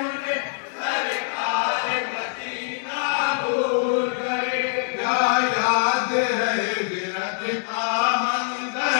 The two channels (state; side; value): silent; right; 63 dB below the other